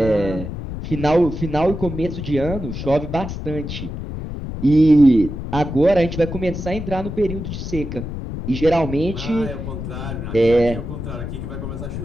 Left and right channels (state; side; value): noise; left; rumble, 7 dB below the sound